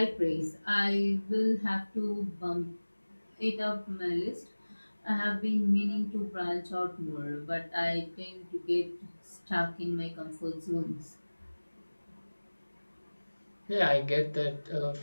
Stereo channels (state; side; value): inverted; both; correlation -1.00